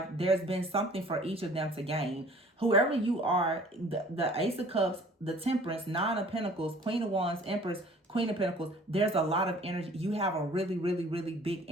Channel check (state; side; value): normal; both; correlation 0.51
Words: there's been something for each of them to gain. Whoever you are, the Ace of Cups, the Temperance, Nine of Pentacles, Queen of Wands, Empress, Queen of Pentacles, there's a lot of energy. You have a really, really, really big